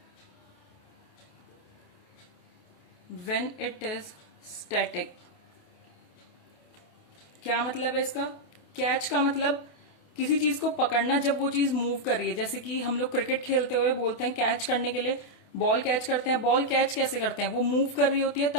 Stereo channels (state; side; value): late; right; 28 ms